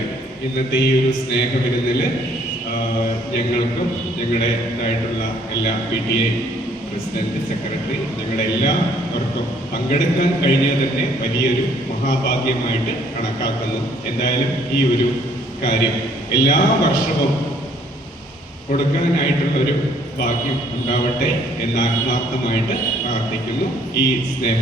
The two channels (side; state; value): both; normal; correlation 0.62